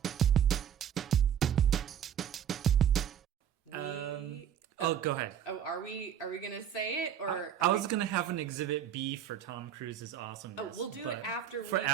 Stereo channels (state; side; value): quieter; left; 9.1 dB